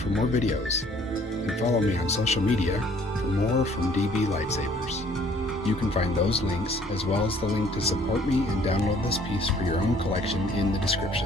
more videos, and follow me on social media for more from DB Lightsabers. You can find those links, as well as the link to support me and download this piece for your own collection in the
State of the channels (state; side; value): normal; both; correlation 0.59